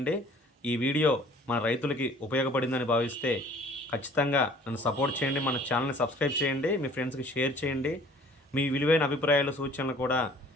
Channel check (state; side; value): normal; both; correlation 0.52